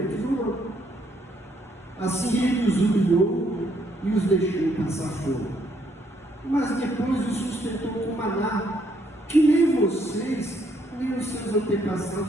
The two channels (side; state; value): both; normal; correlation 0.71